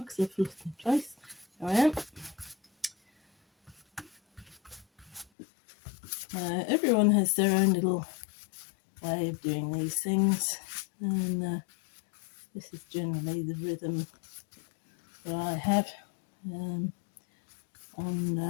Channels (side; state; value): right; drops out; at 5.2 s